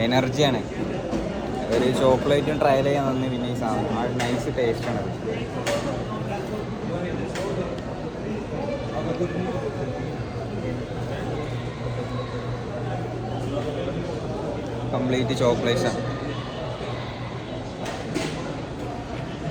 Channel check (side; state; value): both; identical; correlation 1.00